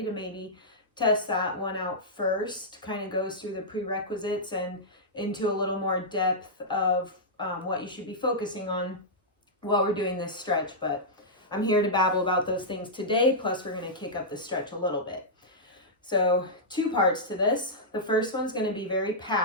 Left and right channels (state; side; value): normal; both; correlation -0.11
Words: to maybe test that one out first. Kind of goes through the prerequisites and into a little more depth of what you should be focusing on while we're doing this stretch, but I'm here to babble about those things today, plus we're going to kick up the stretch a little bit. So 2 parts to this. The first one's going to be very